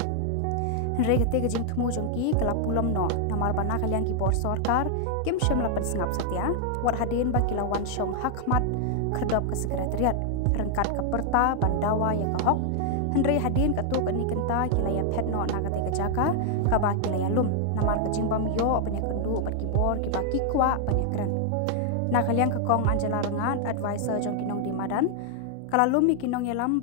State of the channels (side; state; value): both; different; correlation 0.00